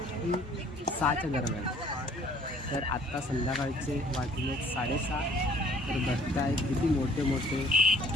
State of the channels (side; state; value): both; normal; correlation 0.57